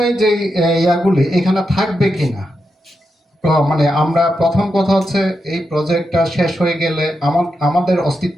যে ইয়াগুলি এখানে থাকবে কিনা, মানে আমরা প্রথম কথা হচ্ছে এই প্রজেক্টটা শেষ হয়ে গেলে আমাদের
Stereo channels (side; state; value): both; normal; correlation 0.86